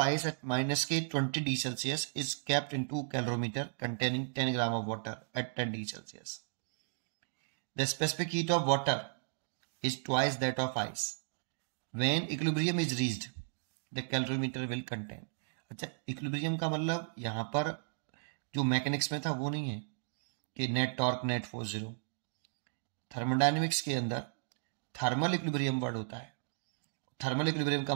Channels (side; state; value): left; silent; digital silence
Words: ice at minus K 20 D Celsius is kept in 2 calorimeter containing 10 gram of water at 10 D Celsius. The specific heat of water is twice that of ice. When equilibrium is reached, the calorimeter will contain. अच्छा, equilibrium का मतलब यहाँ पर जो mechanics में था वो नहीं है कि net torque net force zero. Thermodynamics के अंदर थर्मल इक्विलिब्रियम वर्ड होता है। थर्मल इक्विलिब्रियम का